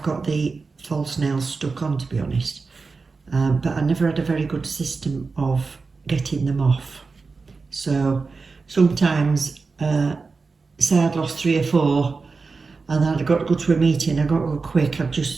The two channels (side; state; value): left; quieter; 4.3 dB